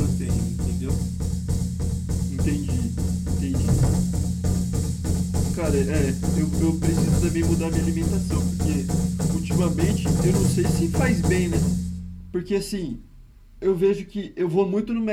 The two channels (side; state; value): both; identical; correlation 1.00